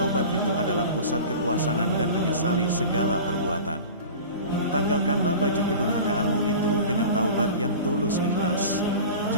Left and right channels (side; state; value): both; inverted; correlation -0.36